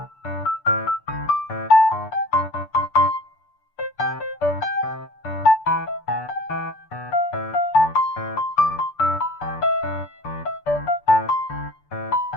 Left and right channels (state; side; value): late; right; 6.8 ms